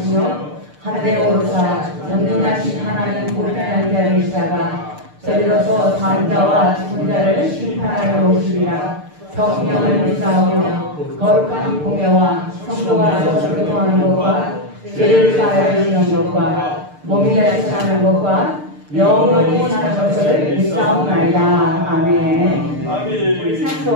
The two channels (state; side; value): late; left; 6.7 ms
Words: 하늘에 오르사 전능하신 하나님 우편한 자를 있다가 저리로서 산 자와 죽은 자를 심판하여 오시리라. 성령을 믿사오며 거룩한 공예와 성도가 서로 교통하는 것과 죄를 사하여 주시는 것과 몸이 다시 사는 것과 영원히 사는 것을 믿사옵나이다. 아멘. 우리